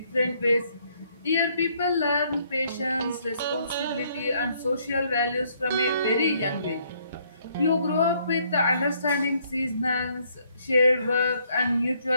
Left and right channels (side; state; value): both; inverted; correlation -0.68